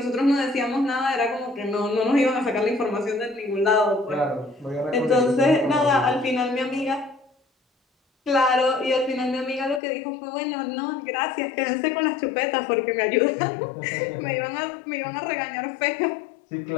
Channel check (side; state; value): right; drops out; at 9.8 s